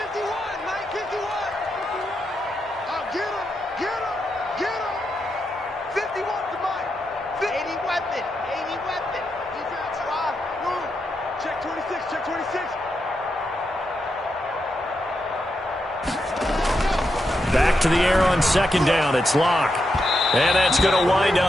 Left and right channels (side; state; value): both; normal; correlation 0.84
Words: Back to the air on second down. It's Locke. And that's going to wind